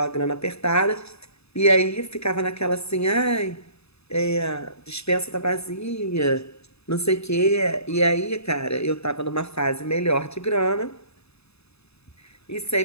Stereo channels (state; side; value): late; right; 0.79 ms